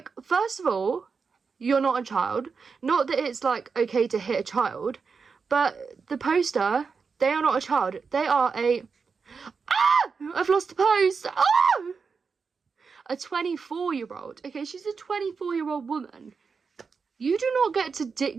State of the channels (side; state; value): left; quieter; 5.3 dB